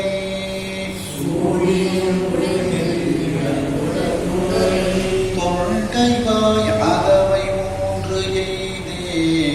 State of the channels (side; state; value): both; identical; correlation 1.00